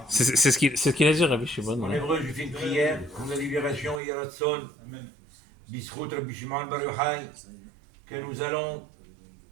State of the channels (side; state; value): left; drops out; at 4.0 s